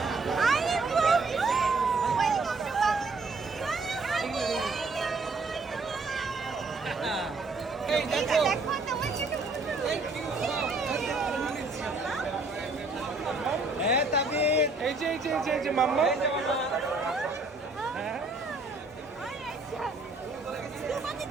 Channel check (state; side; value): quieter; left; 3.5 dB